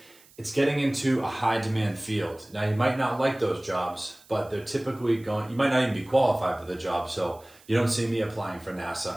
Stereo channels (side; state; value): right; noise; hiss, 26 dB below the sound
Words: it's getting into a high demand field. Now you might not like those jobs, but they're typically you might not even be qualified for the job, so you don't see me applying for